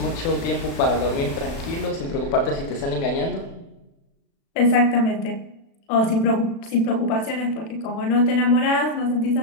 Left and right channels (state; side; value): late; right; 36 ms